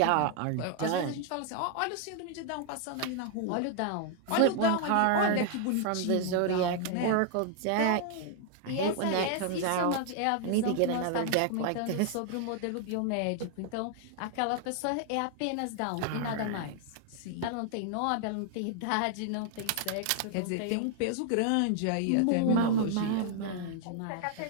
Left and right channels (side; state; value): both; different; correlation 0.00